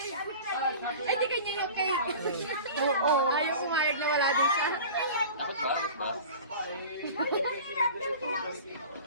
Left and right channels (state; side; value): inverted; both; correlation -0.38